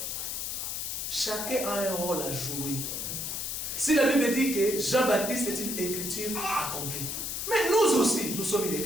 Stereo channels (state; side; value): noise; left; hiss, 3 dB below the sound